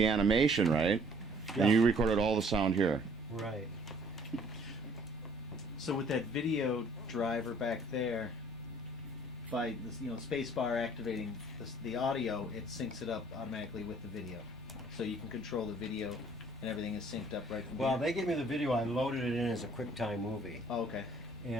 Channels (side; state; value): both; normal; correlation 0.58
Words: animation, right? Yeah. And you recorded all the sound here. Right. So with that video driver back there, by this, space bar activating the audio, it syncs it up automatically with the video. So you can control the video, and everything is synced up right from Well, here. they gave me the video. I loaded it in as a QuickTime movie. Oh, okay.